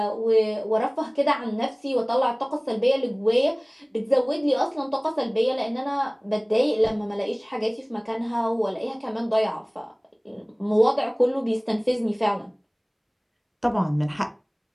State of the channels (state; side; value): identical; both; correlation 1.00